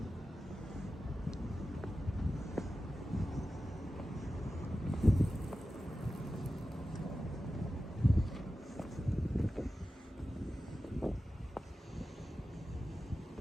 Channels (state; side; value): normal; both; correlation 0.93